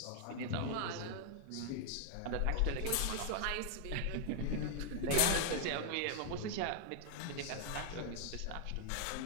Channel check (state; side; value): different; both; correlation 0.00